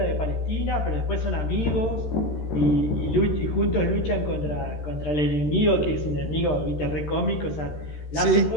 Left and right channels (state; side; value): late; right; 13 ms